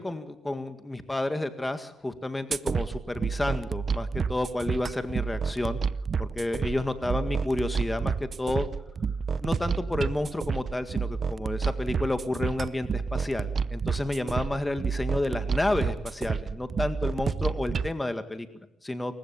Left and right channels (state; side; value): normal; both; correlation 0.90